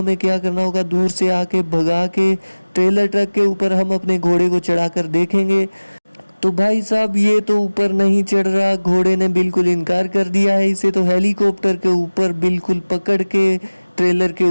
क्या करना होगा, दूर से आके भगा के ट्रेलर ट्रक के ऊपर हम अपने घोड़े को चढ़ाकर देखेंगे। तो भाई साहब ये तो ऊपर नहीं चढ़ रहा, घोड़े ने बिल्कुल इनकार कर दिया है। इसे तो हेलीकॉप्टर के ऊपर बिल्कुल पकड़ के ट्रेलर के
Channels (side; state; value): both; inverted; correlation -1.00